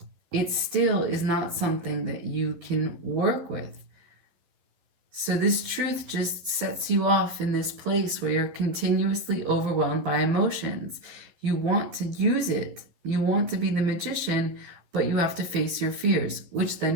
It still is not something that you can work with. So this truth just sets you off in this place where you're continuously overwhelmed by emotions. You want to use it. You want to be the magician, but you have to face your fears, which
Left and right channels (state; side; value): late; left; 12 ms